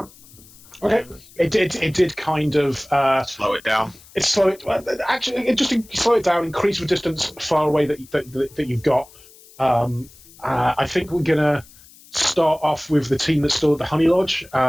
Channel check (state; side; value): noise; left; hiss, 24 dB below the sound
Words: Okay, it did kind of Slow it down. it just slow it down, increase the distance far away that you've got. I think we're gonna start off with the team that's still at the Honey Lodge,